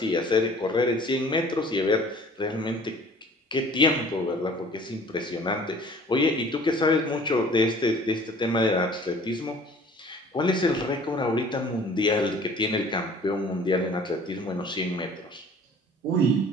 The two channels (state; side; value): normal; both; correlation 0.50